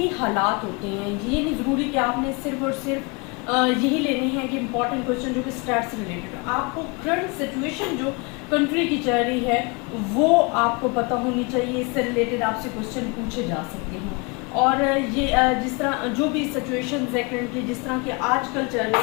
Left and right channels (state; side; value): quieter; right; 30.1 dB